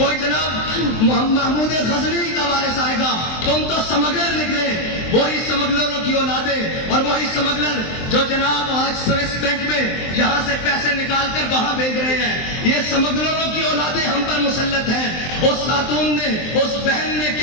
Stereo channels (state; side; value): late; right; 23 ms